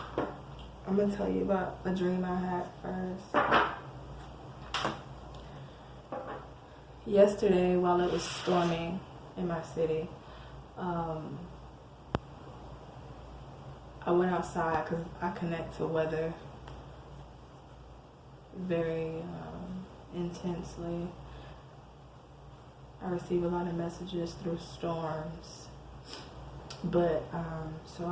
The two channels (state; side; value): identical; both; correlation 1.00